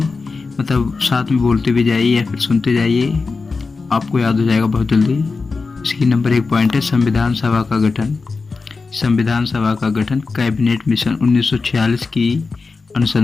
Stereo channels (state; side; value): quieter; right; 4.2 dB